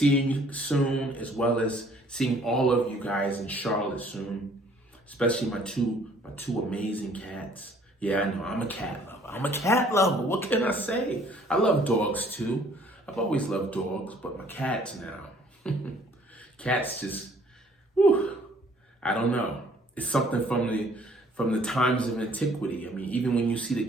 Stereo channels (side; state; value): both; normal; correlation 0.58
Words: you soon, as well as seeing all of you guys in Charlotte soon, especially my two amazing cats. Yeah, I know, I'm a cat lover. What can I say? I love dogs too. I've always loved dogs, but my cats now. Cats just, I don't know. It's something from the times of antiquity. I mean, even when you see the